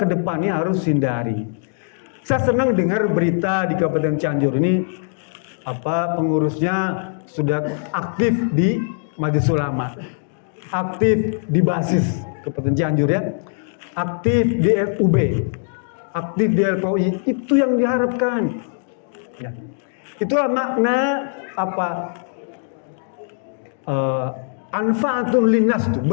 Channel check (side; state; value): right; silent; digital silence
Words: depannya harus hindari. Saya senang dengar berita di Kabupaten Cianjur ini, pengurusnya sudah aktif di Majelis Ulama, aktif di basis Kabupaten Cianjur, ya, aktif di FUB, aktif di LPOI. Itu yang diharapkan, ya. Itulah makna anfaatun linnas tuh,